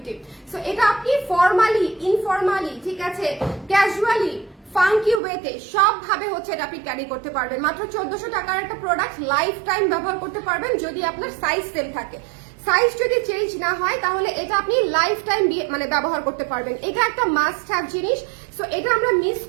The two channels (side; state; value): left; drops out; at 5.2 s